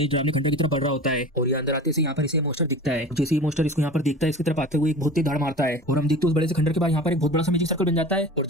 डरावने खंडर की तरफ बढ़ रहा होता है और ये अंदर आते से यहाँ पर इसे मोस्टर दिखता है। जैसे ही मोस्टर इसको यहाँ पर देखता है इसकी तरफ आते हुए एक बहुत ही धाड़ मारता है और हम देखते हैं उस बड़े से खंडर के बाद यहाँ पर एक बहुत बड़ा सा मैजिक सर्कल बन जाता है और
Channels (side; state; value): both; normal; correlation 0.36